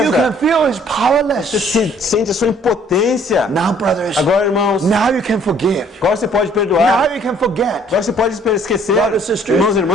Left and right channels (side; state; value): both; normal; correlation 0.59